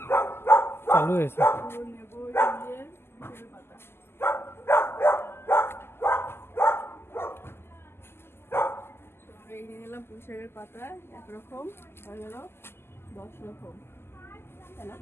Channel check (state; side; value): late; right; 0.12 ms